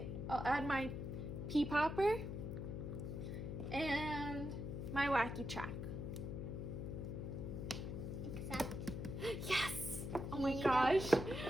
I'll add my pea popper and my wacky track. Except. Yes! Oh my Here you gosh. go.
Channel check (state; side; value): noise; left; hum, 4 dB below the sound